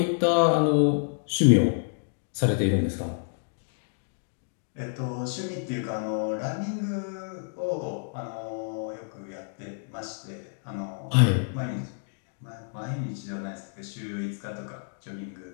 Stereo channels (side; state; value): right; silent; digital silence